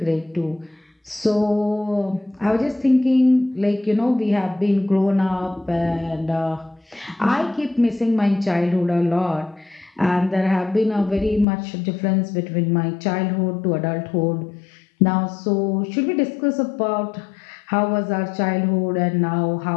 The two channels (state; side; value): drops out; right; at 11.5 s